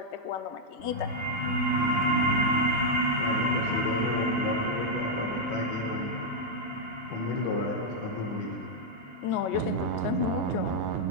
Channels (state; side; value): late; left; 3.2 ms